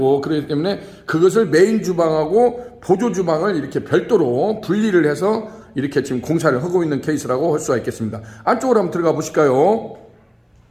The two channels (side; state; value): both; identical; correlation 1.00